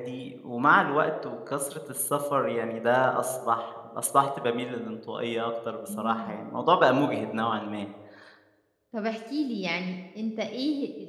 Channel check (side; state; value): both; identical; correlation 1.00